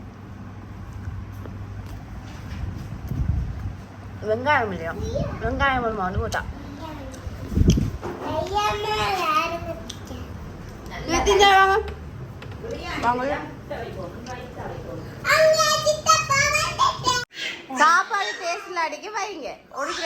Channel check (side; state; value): both; identical; correlation 1.00